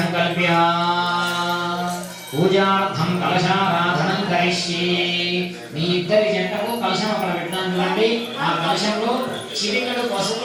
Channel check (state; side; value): identical; both; correlation 1.00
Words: పూజార్థం కలశారాధనం కరిష్యే. మీ ఇద్దరి జంటకు కలశం అక్కడ పెట్టాను చూడండి. ఆ కలశంలో చిటికెడు